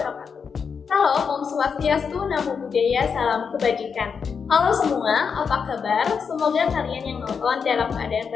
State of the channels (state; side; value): quieter; right; 6.1 dB